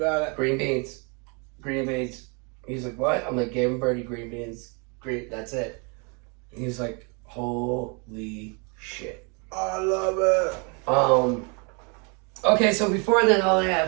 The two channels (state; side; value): quieter; left; 33.8 dB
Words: it. green beans. He's like, "What?" I'm like, "Gave him Birdie green beans. Green, that's it." And he's like, "Holy shit." I love it. Okay, so before then,